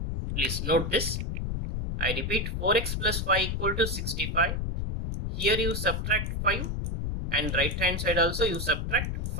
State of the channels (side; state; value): left; noise; rumble, 2 dB below the sound